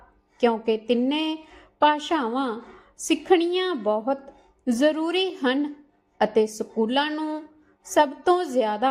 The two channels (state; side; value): identical; both; correlation 1.00